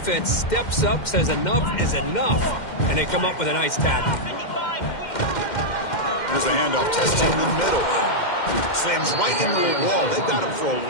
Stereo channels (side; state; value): right; late; 2.1 ms